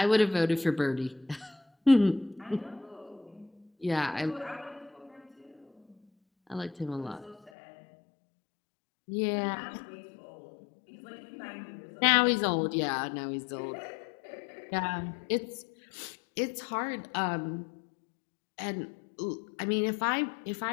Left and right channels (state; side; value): drops out; right; at 7.5 s